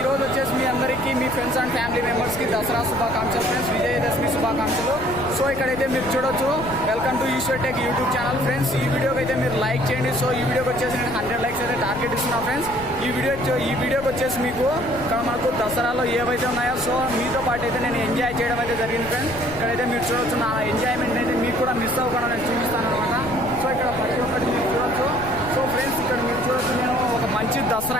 రోజు వచ్చేసి మీ అందరికీ మీ ఫ్రెండ్స్ అండ్ ఫ్యామిలీ మెంబర్స్కి దసరా శుభాకాంక్షలు ఫ్రెండ్స్, విజయదశమి శుభాకాంక్షలు. సో ఇక్కడైతే మీరు చూడొచ్చు, welcome to Eshwar tech YouTube channel friends. ఈ వీడియోకి అయితే మీరు లైక్ చేయండి. సో ఈ వీడియోకి వచ్చేసి నేను 100 లైక్స్ అయితే టార్గెట్ ఇస్తున్నా ఫ్రెండ్స్. ఈ వీడియోకి వచ్చేసి మీకు ఇక్కడ మనకు దసరాలో ఏవైతే ఉన్నాయో సో మీతో పాటు అయితే నేను ఎంజాయ్ చేయడం అయితే జరిగింది ఫ్రెండ్స్. ఇక్కడైతే మీరు చూడొచ్చు, నా ఎంజాయ్మెంట్ అయితే మీకు కూడా మిస్ అవ్వకుండా నేను చూపిస్తాను అనమాట. సో ఇక్కడ ప్రతి ఒక్కటి మీరు చూడొచ్చు. సో ఫ్రెండ్స్ ఇక్కడ మీరు చూడొచ్చు, నేను ఒక మంచి దసరా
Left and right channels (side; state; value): left; noise; rumble, 13 dB below the sound